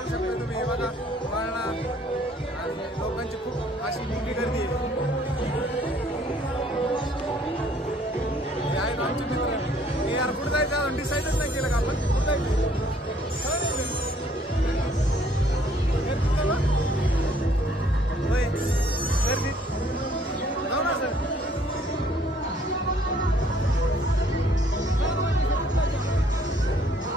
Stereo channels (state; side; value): normal; both; correlation 0.62